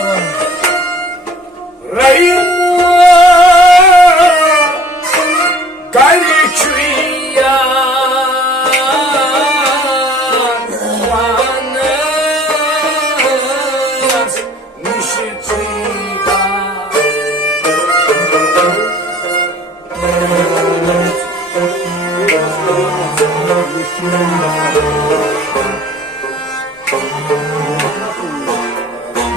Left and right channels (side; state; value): both; normal; correlation 0.52